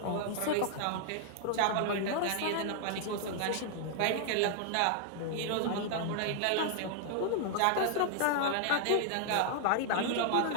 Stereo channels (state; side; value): different; both; correlation 0.00